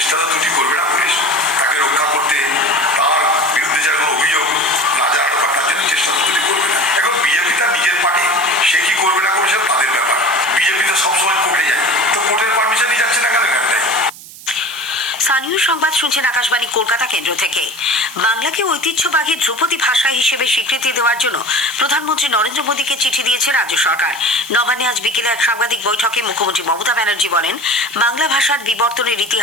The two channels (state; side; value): noise; right; hiss, 17 dB below the sound